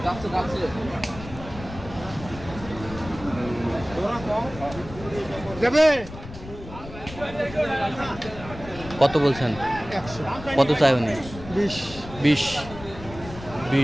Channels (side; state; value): left; noise; rumble, 14 dB below the sound